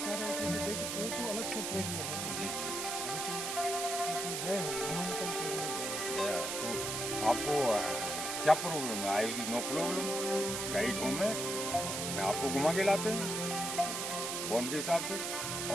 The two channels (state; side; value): noise; right; hiss, 2 dB below the sound